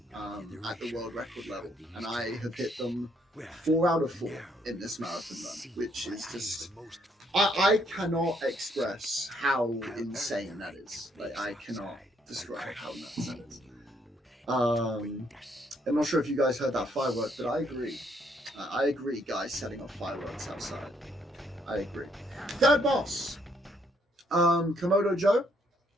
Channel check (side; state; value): both; normal; correlation 0.70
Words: at the world record level, and I have hit them 4 out of 4 in this marathon run, which is just, I cannot express how insane that is. Like, I cannot describe how nuts that is. I'm not sure if you guys heard that firework, but I agree. I agree, guys setting off fireworks outside. I agree. Third boss, Komodo Joe.